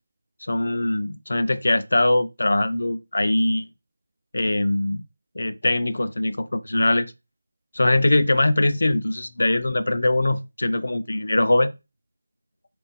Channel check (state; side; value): inverted; both; correlation -0.99